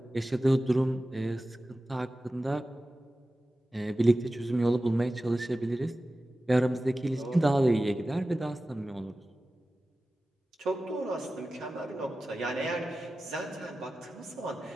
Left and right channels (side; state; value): both; normal; correlation 0.95